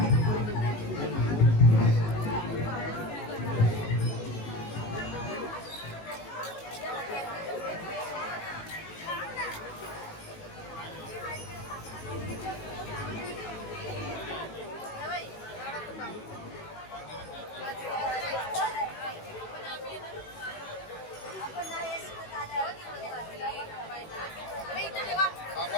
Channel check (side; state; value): right; late; 18 ms